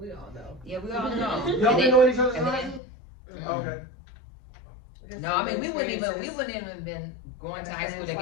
all know. Yeah, we all know. Y'all And been knowing each other and since high then- school? Okay. No, I mean we wouldn't even been going to high school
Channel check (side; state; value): right; drops out; at 2.8 s